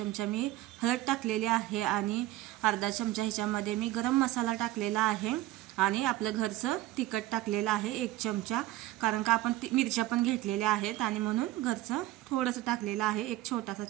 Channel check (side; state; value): left; quieter; 15.9 dB